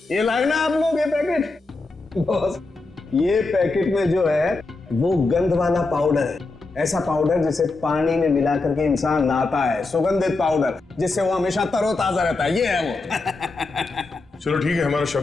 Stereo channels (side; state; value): right; quieter; 3.5 dB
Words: ये लाए ना आप लोग, ये पैकेट। बॉस, ये पैकेट में जो है वो गंध वाला पाउडर है, ऐसा पाउडर जिसे पानी में मिला करके इंसान नहाता है, सुगंधित पाउडर जिससे वो हमेशा तरोताजा रहता है, ये है वो। चलो ठीक है, हमारा